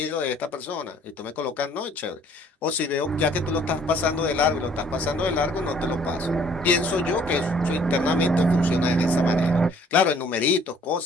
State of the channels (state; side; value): normal; both; correlation 0.58